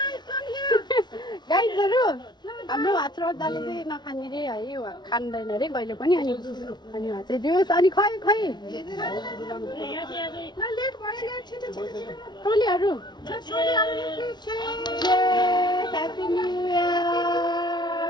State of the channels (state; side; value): late; right; 0.21 ms